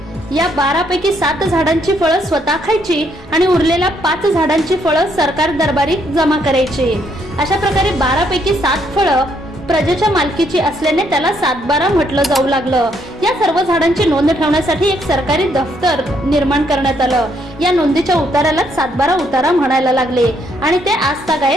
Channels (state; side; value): normal; both; correlation 0.72